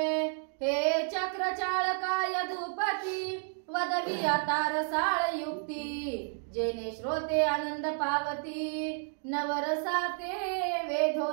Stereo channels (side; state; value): left; silent; 57 dB below the other